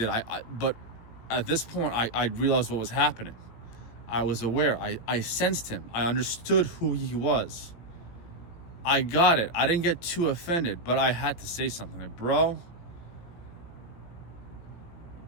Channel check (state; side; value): late; right; 18 ms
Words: But at this point, I realized what was happening. I was aware. I sensed him. I understood who he was. I got it. I didn't get too offended, but I had to say something. Like, bro,